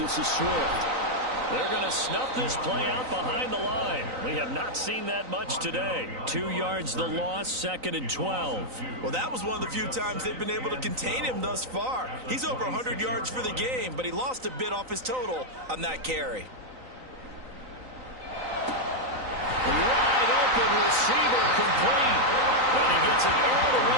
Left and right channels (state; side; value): late; left; 3.9 ms